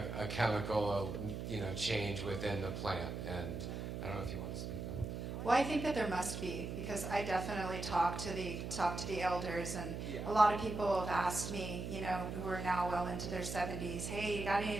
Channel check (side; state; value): right; noise; hum, 5 dB below the sound